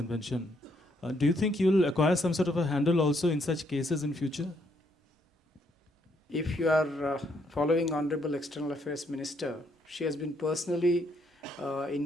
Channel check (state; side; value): normal; both; correlation 0.72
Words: do you think you'll acquire some sort of a handle also in such cases in future? If you are following Honorable External Affairs Minister, she has been personally